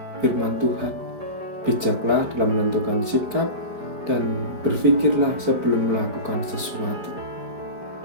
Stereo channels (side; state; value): left; late; 5.0 ms